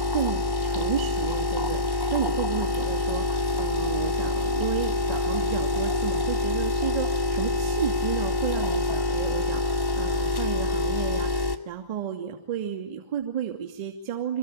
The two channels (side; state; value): left; late; 1.1 ms